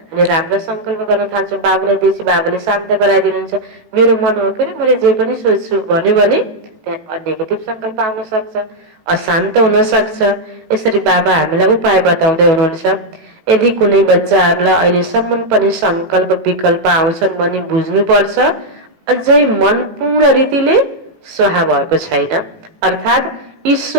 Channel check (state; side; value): late; left; 18 ms